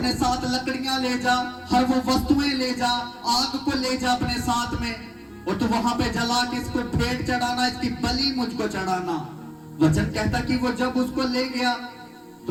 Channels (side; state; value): both; identical; correlation 1.00